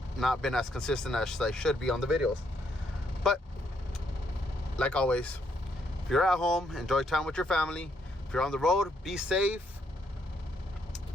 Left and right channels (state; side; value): normal; both; correlation 0.74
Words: not been as consistent as I should be on the videos. But like always, if you're at home, enjoy time with your family. If you're on the road, be safe.